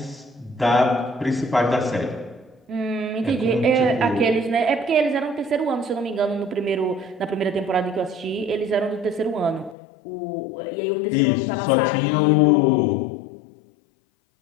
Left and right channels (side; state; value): right; drops out; at 9.8 s